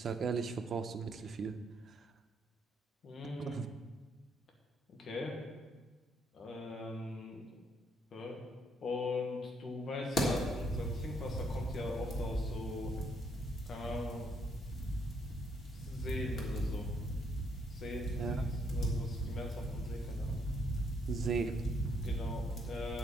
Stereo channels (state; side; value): normal; both; correlation 0.72